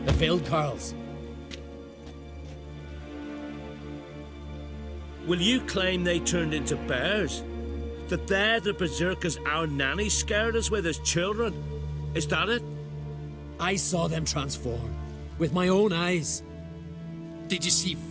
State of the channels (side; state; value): both; identical; correlation 1.00